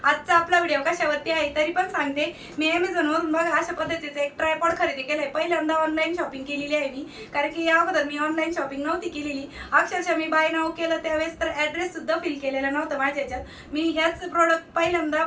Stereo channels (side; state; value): both; identical; correlation 1.00